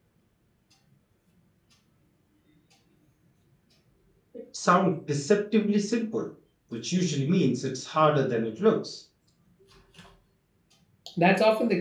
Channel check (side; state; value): both; identical; correlation 1.00